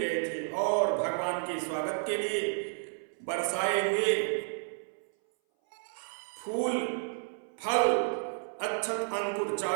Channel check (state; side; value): silent; left; 57 dB below the other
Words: थे और भगवान के स्वागत के लिए बरसाए हुए फूल, फल, अक्षत, अंकुर